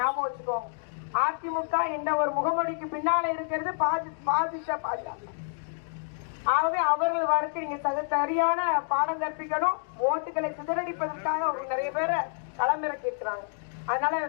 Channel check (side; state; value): right; silent; digital silence